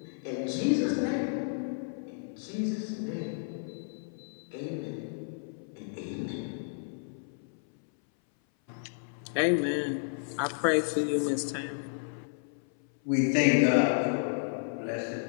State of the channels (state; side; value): silent; right; 57 dB below the other